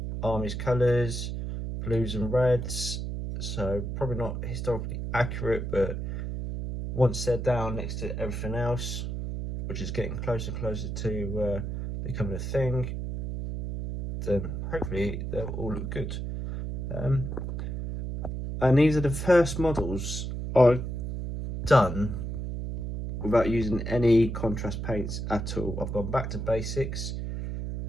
army's colours, blues and reds. So probably not historically accurate, but once they're down next to everything else, which is getting closer and closer to becoming a thing, then hopefully they'll all look good. And these are the first models I've done without using any contrast paints at all. I've gone back to basics.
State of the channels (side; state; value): right; noise; hum, 4 dB below the sound